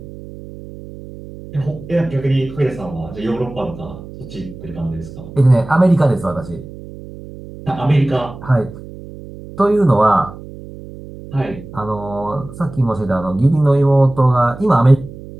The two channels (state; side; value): noise; right; hum, 15 dB below the sound